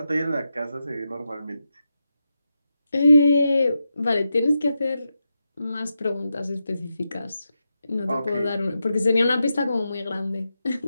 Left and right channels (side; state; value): both; inverted; correlation -0.87